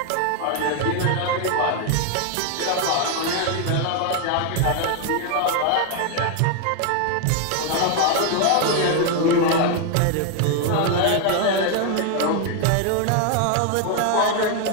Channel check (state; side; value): different; both; correlation 0.01